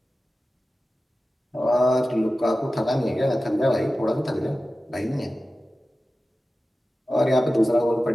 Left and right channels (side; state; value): both; normal; correlation 0.95